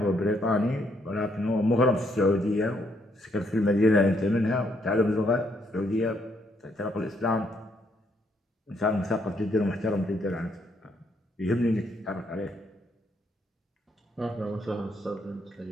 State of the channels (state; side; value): normal; both; correlation 0.72